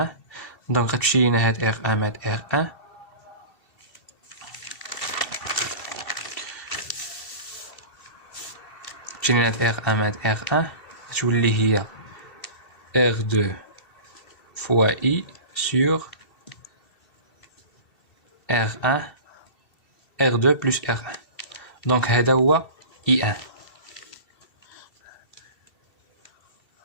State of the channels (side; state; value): right; late; 2.7 ms